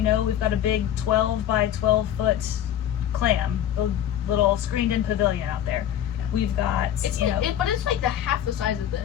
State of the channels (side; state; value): right; quieter; 10.7 dB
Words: got a big 12 by 12 foot clam, the little screened in pavilion out there. We've got, it's but it's like the half the size of